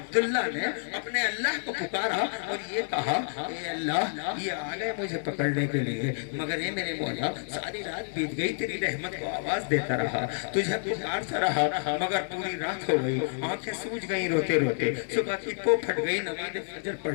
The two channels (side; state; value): right; silent; digital silence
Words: نے اپنے اللہ کو پکارا اور یہ کہا, اے اللہ, یہ آ گئے مجھے پکڑنے کے لیے, مگر اے میرے مولا, ساری رات بیت گئی, تیری رحمت کو آواز دیتا رہا, تجھے پکارتا رہا, مگر پوری رات ہو گئی, آنکھیں سوج گئی روتے روتے, صبح کی پو پھٹ گئی, نماز فجر